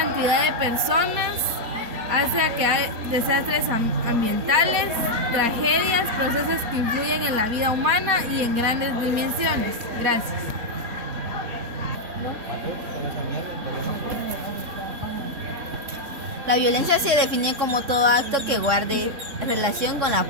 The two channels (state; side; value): late; left; 3.6 ms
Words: de personas, hace que hay desastres ambientales, tragedias, procesos que influyen en la vida humana y en grandes dimensiones. Gracias. La violencia se define como todo acto que guarde relación con la